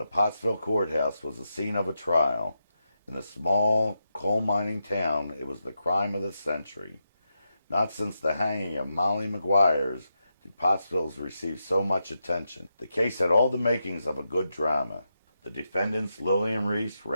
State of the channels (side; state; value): both; inverted; correlation -0.87